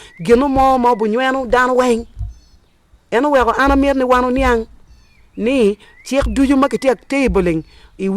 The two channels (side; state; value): both; identical; correlation 1.00